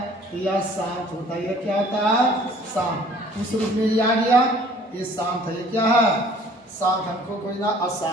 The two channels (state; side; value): normal; both; correlation 0.54